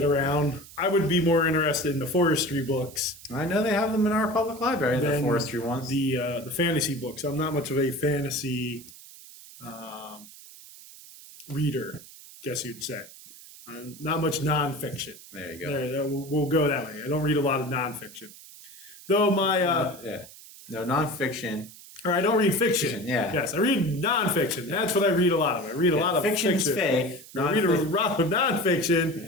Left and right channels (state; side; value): noise; right; hiss, 19 dB below the sound